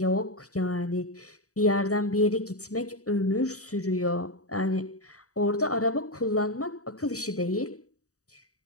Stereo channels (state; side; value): late; right; 0.66 ms